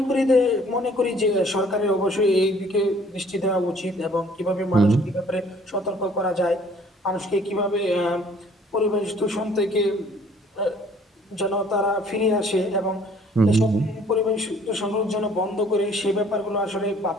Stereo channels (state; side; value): normal; both; correlation 0.57